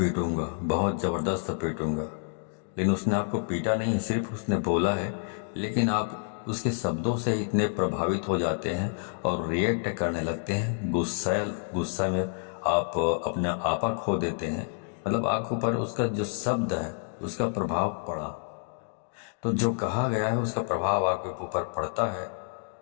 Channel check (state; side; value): silent; right; digital silence